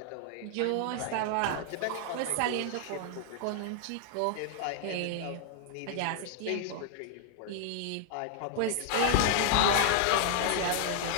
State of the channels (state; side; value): different; both; correlation 0.00